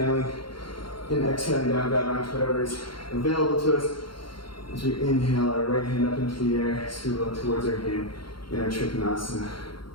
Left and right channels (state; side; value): late; right; 0.73 ms